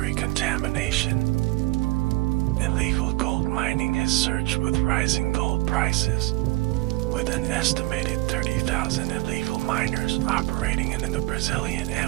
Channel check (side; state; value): left; quieter; 20.4 dB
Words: contamination. Illegal gold mining has surged with rising gold prices, with an estimated 30,000 illegal miners operating in the Brazilian